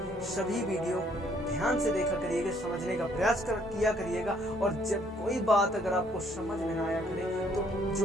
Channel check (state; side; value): normal; both; correlation 0.65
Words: सभी वीडियो ध्यान से देखा करिएगा, समझने का प्रयास किया करिएगा। और जब कोई बात अगर आपको समझ में ना आया करे तो जो